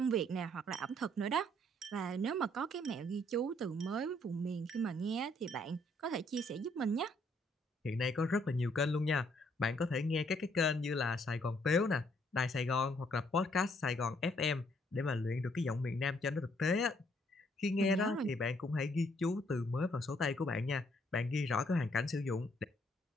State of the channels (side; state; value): both; normal; correlation 0.68